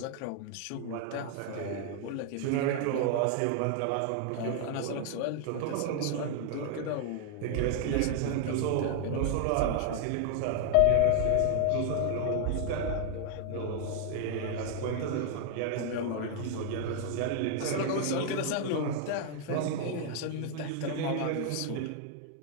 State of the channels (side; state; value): both; different; correlation 0.00